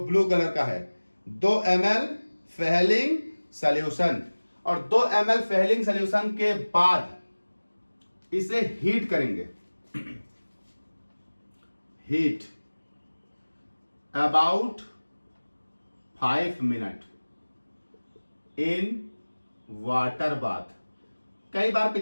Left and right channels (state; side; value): inverted; both; correlation -1.00